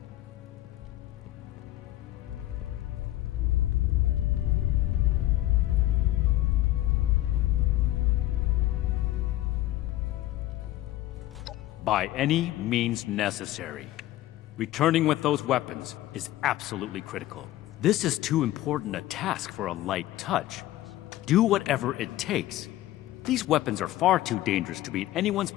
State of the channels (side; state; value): right; quieter; 15.2 dB